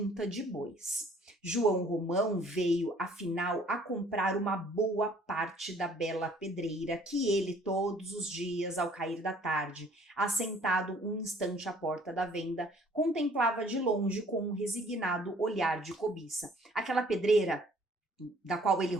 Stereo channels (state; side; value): normal; both; correlation 0.57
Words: de bois. João Romão veio, afinal, a comprar uma boa parte da bela pedreira que ele, todos os dias, ao cair da tarde, assentado um instante à porta da venda, contemplava de longe com um resignado olhar de cobiça. Aquela pedreira da qual ele